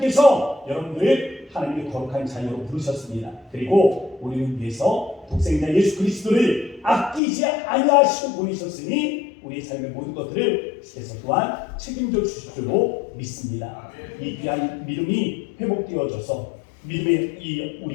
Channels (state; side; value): drops out; right; at 7.2 s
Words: 여러분들을 하나님의 거룩한 자녀로 부르셨습니다. 그리고 우리를 위해서 독생자 예수 그리스도를 아끼지 아니하시고 보내셨으니 우리의 삶의 모든 것들을 주께서 또한 책임져 주실 줄로 믿습니다. 이 귀한 믿음이 회복되어져서 믿음의 이